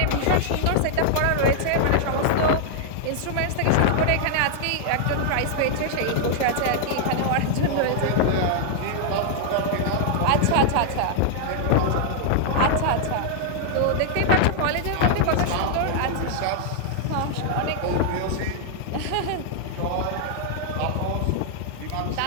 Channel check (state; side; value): different; both; correlation -0.01